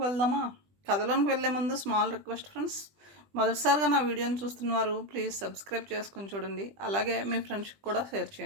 వెళ్దామా? కథలోనికి వెళ్ళే ముందు స్మాల్ రిక్వెస్ట్ ఫ్రెండ్స్, మొదటిసారిగా నా వీడియోని చూస్తున్నవారు ప్లీజ్ సబ్స్క్రైబ్ చేసుకుని చూడండి. అలాగే మీ ఫ్రెండ్స్కి కూడా షేర్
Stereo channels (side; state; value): left; late; 20 ms